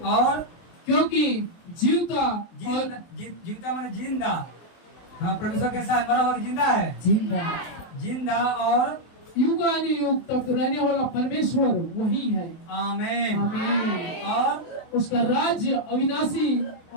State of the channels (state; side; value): late; right; 24 ms